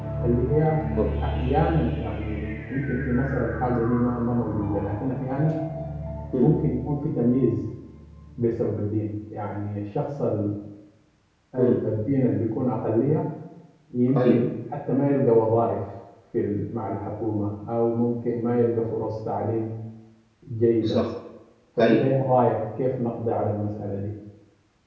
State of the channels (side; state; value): both; identical; correlation 1.00